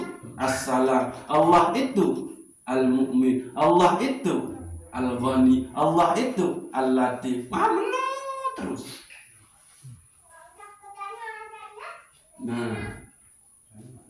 As-Salam. Allah itu Al-Mu'min. Allah itu Al-Ghani. Allah itu Al-Latif. Terus. Nah,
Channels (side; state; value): both; identical; correlation 1.00